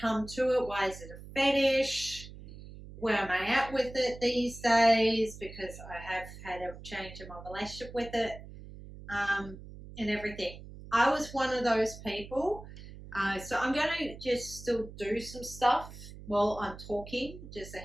to it? Why is it a fetish? Where am I at with it these days? Because I have had a change in my relationship with it, and everything. I was one of those people. So I'm going to just still do some stuff while I'm talking, just a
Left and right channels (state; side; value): noise; right; hum, 15 dB below the sound